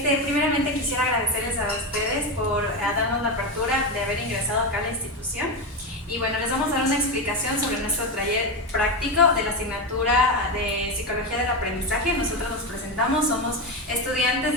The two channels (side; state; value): both; normal; correlation 0.14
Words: quisiera agradecerles a ustedes por darnos la apertura de haber ingresado acá a la institución. Y bueno, les vamos a dar una explicación sobre nuestro taller práctico de la asignatura de Psicología del Aprendizaje. Nosotros nos presentamos, somos estudiantes